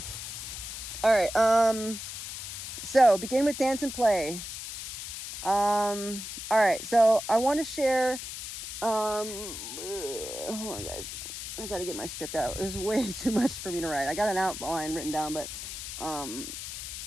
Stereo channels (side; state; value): left; noise; hiss, 8 dB below the sound